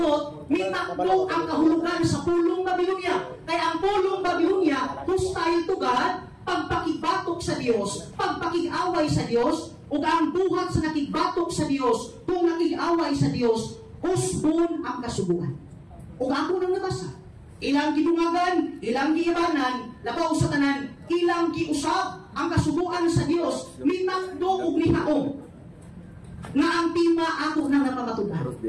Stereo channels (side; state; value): both; identical; correlation 1.00